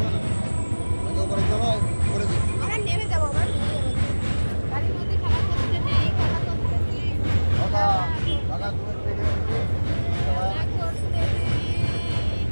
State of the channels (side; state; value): both; inverted; correlation -1.00